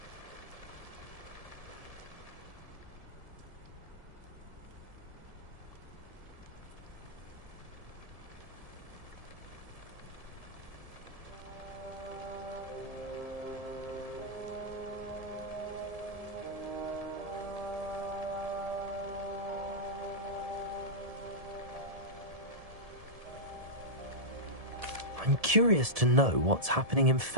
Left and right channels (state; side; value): late; left; 1.7 ms